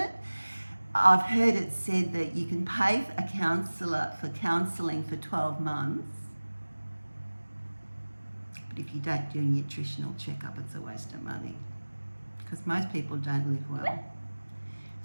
I've heard it said that you can pay a counsellor for counselling for 12 months. But if you don't do a nutritional checkup, it's a waste of money. Because most people don't live well.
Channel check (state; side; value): inverted; both; correlation -1.00